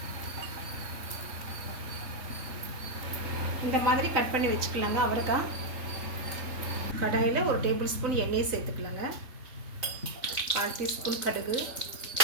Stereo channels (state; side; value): late; left; 3.9 ms